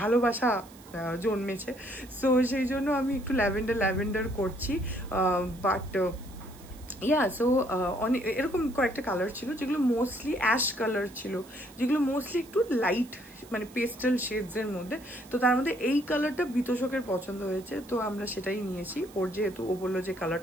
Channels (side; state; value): right; noise; hiss, 23 dB below the sound